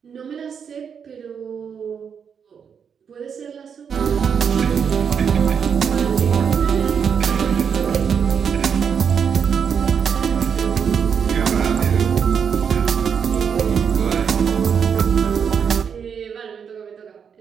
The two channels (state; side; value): quieter; left; 7.1 dB